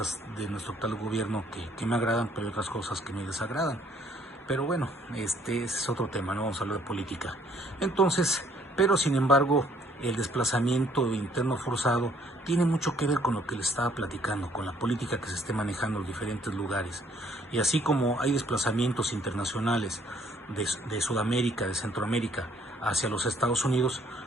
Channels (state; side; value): normal; both; correlation 0.64